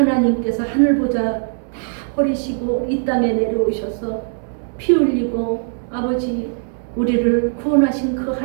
하늘보다 다 버리시고 이 땅에 내려오셔서 피 흘리고 아버지 우리를 구원하신 그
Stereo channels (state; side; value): silent; left; 66 dB below the other